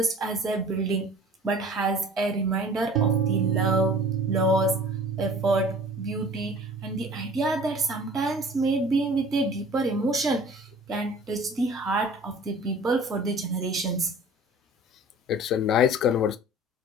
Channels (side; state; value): both; normal; correlation 0.46